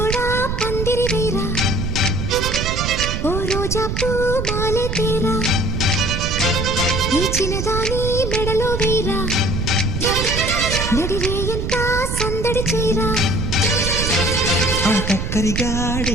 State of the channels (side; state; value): right; noise; rumble, 2 dB below the sound